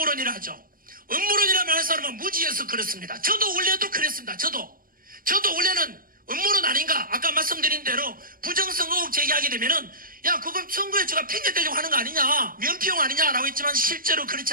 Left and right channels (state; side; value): late; left; 0.41 ms